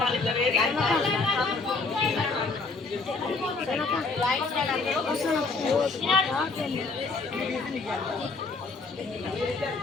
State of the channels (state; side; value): quieter; right; 3.9 dB